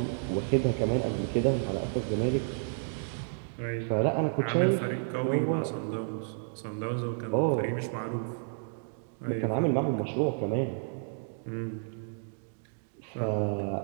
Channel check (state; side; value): silent; left; digital silence